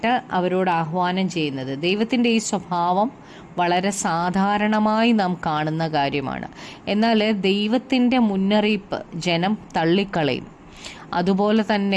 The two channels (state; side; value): identical; both; correlation 1.00